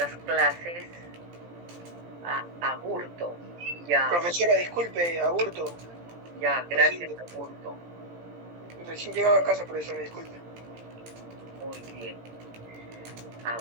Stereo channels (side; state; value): left; late; 17 ms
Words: clases. Aburto. Ya. Profesora, disculpe, Aburto. Ya, gracias, Aburto. Recién llegaba a casa, profesora, disculpe. Muy bien.